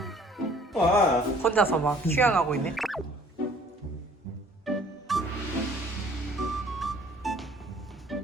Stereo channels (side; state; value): both; normal; correlation 0.55